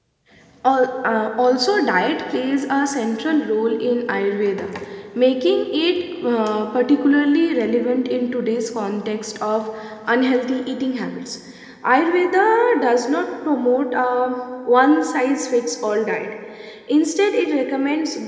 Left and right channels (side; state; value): both; identical; correlation 1.00